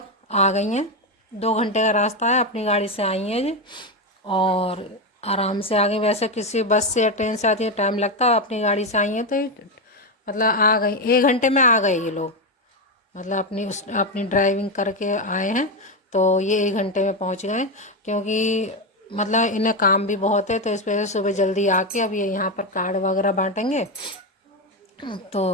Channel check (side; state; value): both; normal; correlation 0.10